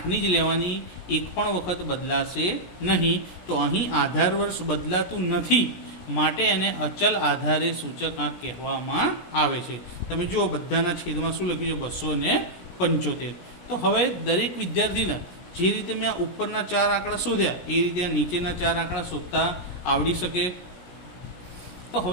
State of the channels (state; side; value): late; right; 17 ms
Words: જ લેવાની, એક પણ વખત બદલાશે નહીં. તો અહીં આધાર વર્ષ બદલાતું નથી, માટે એને અચલ આધારે સૂચકાંક કહેવામાં આવે છે. તમે જુઓ બધાના છેદમાં શું લખ્યું છે? 275. તો હવે દરેક વિદ્યાર્થીને જે રીતે મેં આ ઉપરના 4 આંકડા શોધ્યા એ રીતે આ નીચેના 4 આંકડા શોધતા આવડી શકે. તો